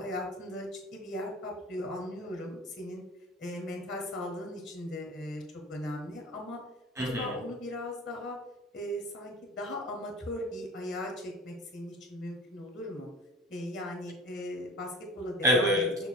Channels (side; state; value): both; normal; correlation 0.40